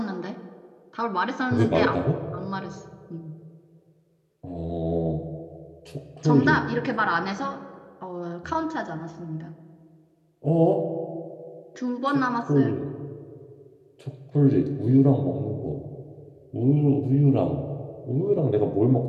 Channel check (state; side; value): identical; both; correlation 1.00